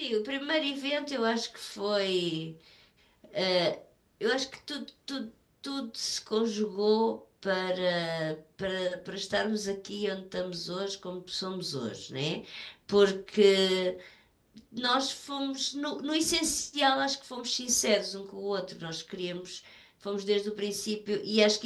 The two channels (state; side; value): identical; both; correlation 1.00